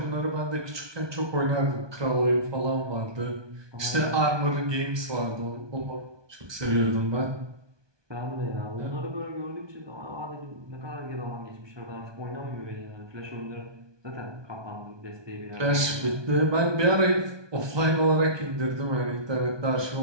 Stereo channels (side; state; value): left; late; 1.2 ms